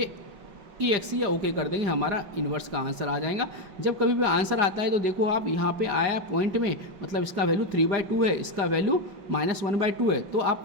EX या ओके कर देंगे, हमारा इन्वर्स का आंसर आ जाएगा। जब कभी भी आंसर आता है तो देखो आप यहाँ पे आया पॉइंट में, मतलब इसका वैल्यू 3/2 है, इसका वैल्यू -1/2 है, तो आप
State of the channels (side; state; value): left; late; 5.4 ms